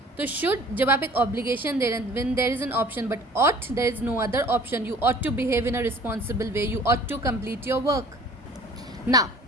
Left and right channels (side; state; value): both; normal; correlation 0.49